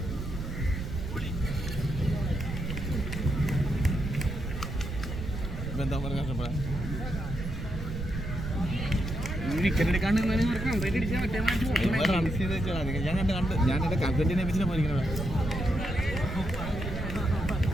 എന്താ പറയുക ഞാൻ കണ്ട് ഞാൻ എന്റെ കമ്പറ്റിനെ വെച്ചിട്ട് പോയിരിക്കണ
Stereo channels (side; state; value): right; noise; rumble, 6 dB below the sound